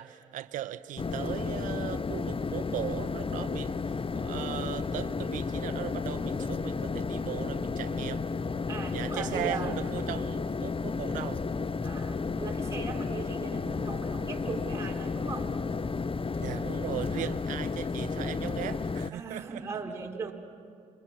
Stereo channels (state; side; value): normal; both; correlation 0.64